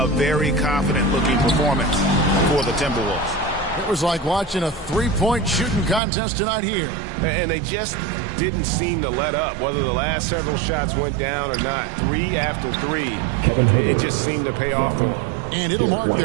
very confident-looking performance for the Timberwolves. It was like watching a three-point shooting contest tonight here. And they just didn't seem to let up, whether the last several shots went down or not. Three after three, it just seemed to pay off for them. And it'll mark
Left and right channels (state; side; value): drops out; left; at 6.0 s